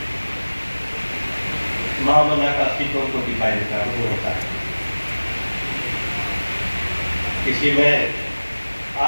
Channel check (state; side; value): inverted; both; correlation -1.00